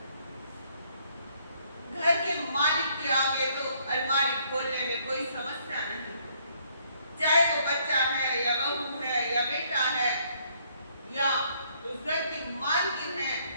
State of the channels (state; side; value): inverted; both; correlation -0.67